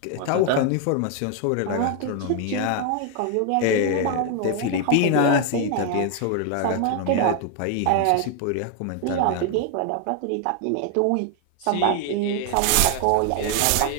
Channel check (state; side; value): different; both; correlation 0.01